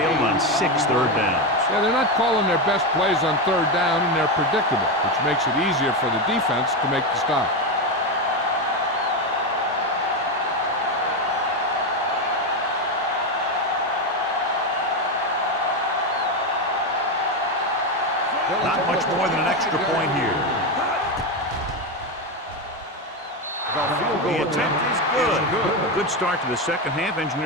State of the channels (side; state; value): both; normal; correlation 0.12